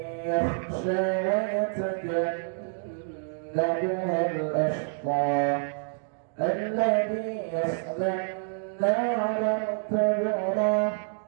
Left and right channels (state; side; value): silent; left; digital silence